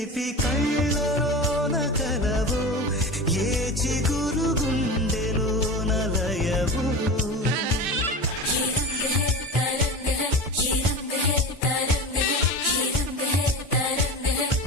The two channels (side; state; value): both; normal; correlation 0.28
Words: కళ్ళలోన కలవో ఏ చిగురు గుండెలోన లయవో